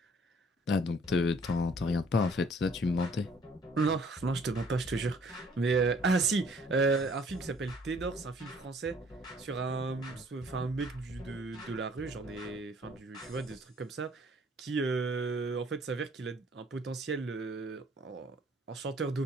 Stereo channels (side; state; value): both; normal; correlation 0.59